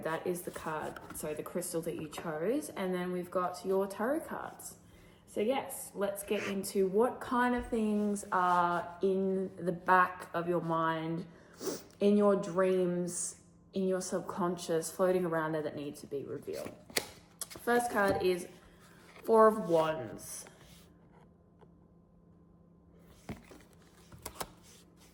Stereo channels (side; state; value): both; identical; correlation 1.00